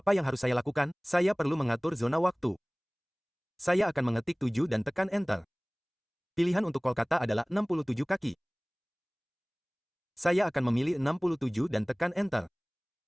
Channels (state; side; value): identical; both; correlation 1.00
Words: yang harus saya lakukan? Saya perlu mengatur zona waktu. Saya akan mengetik 7 dan tekan Enter. Pilihan untuk Kolkata adalah 67 kaki. Saya akan memilih 67 dan tekan Enter.